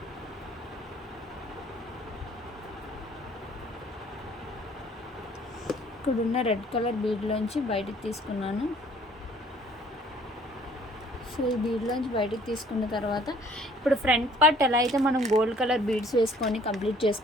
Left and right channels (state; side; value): normal; both; correlation 0.57